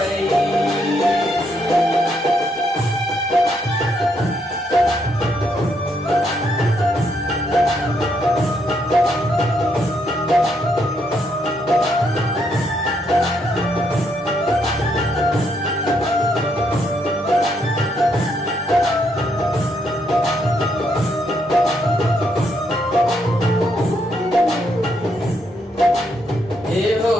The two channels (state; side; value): normal; both; correlation 0.75